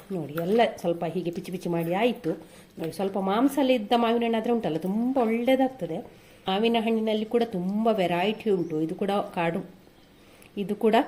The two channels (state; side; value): identical; both; correlation 1.00